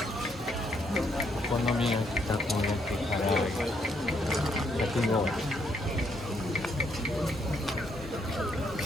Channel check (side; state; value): both; normal; correlation 0.73